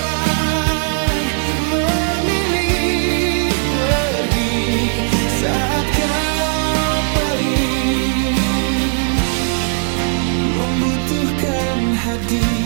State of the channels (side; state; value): left; silent; 55 dB below the other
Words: memilih pergi saat kau paling membutuhkan